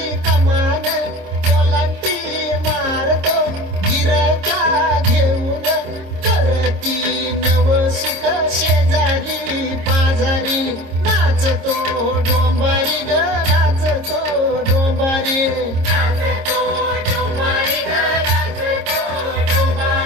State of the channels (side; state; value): left; late; 26 ms